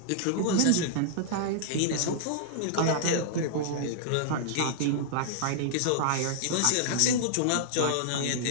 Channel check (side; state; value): both; different; correlation -0.01